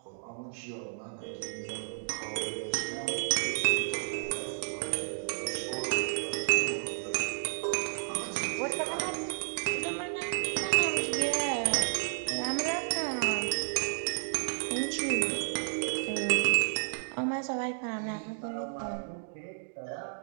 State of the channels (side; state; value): left; silent; digital silence